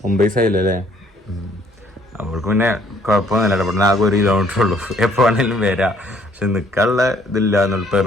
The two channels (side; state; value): both; normal; correlation 0.63